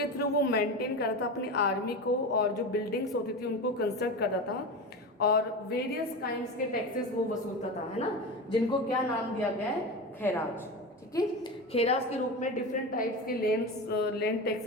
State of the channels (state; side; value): normal; both; correlation 0.24